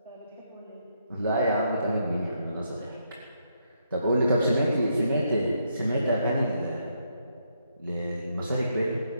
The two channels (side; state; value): both; inverted; correlation -0.77